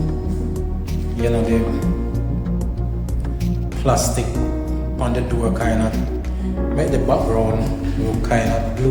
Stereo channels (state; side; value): identical; both; correlation 1.00